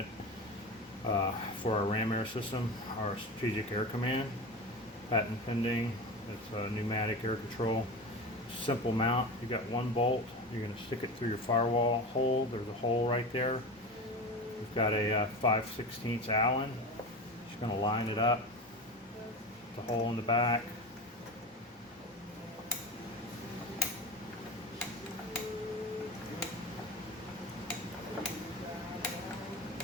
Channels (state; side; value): normal; both; correlation 0.27